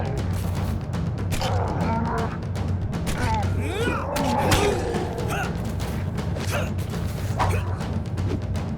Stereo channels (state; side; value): identical; both; correlation 1.00